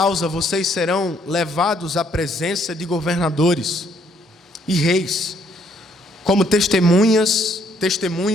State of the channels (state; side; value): normal; both; correlation 0.67